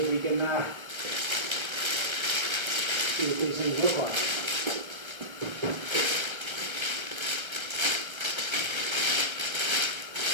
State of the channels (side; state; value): left; late; 1.3 ms